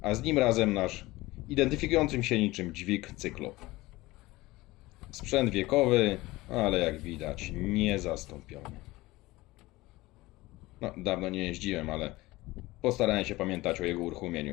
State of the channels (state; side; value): quieter; right; 19.7 dB